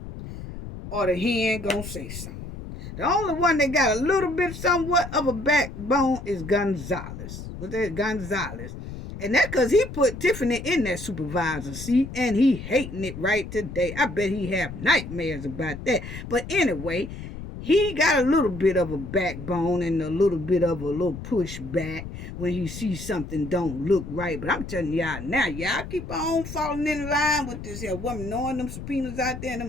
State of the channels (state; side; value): noise; left; rumble, 10 dB below the sound